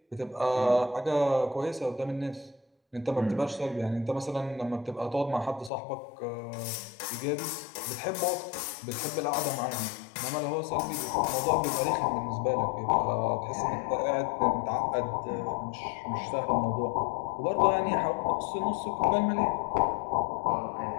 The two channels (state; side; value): drops out; right; at 5.7 s